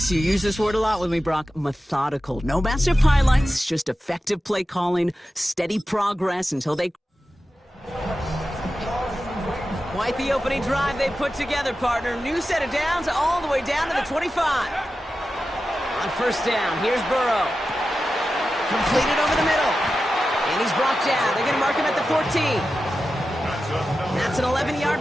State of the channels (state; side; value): normal; both; correlation 0.92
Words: you use this word a lot with me, Brock, methodical. No massive highlights, just effective play calling, steady progress until they... Quite the opening drive they put together, partner. New set of downs all the way down to the 25. On first down, here's Burrow. Completed over the middle. And he's brought down. They're going to mark him at the 14. That's an